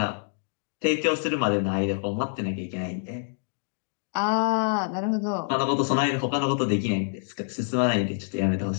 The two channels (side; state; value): right; silent; digital silence